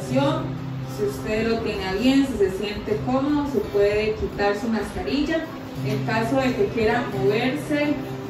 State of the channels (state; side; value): identical; both; correlation 1.00